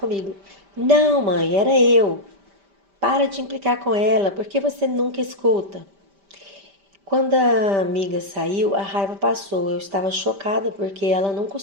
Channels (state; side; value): late; left; 5.1 ms